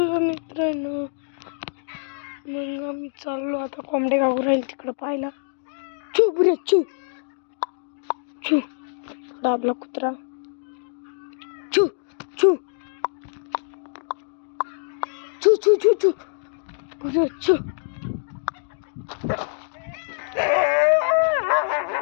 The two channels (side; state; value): right; silent; digital silence